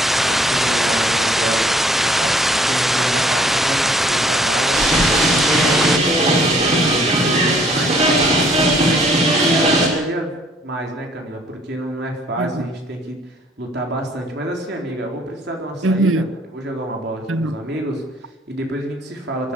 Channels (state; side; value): normal; both; correlation 0.61